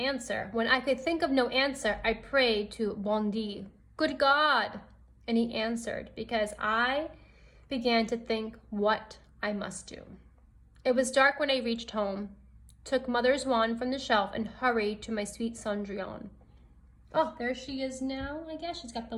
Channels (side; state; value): both; identical; correlation 1.00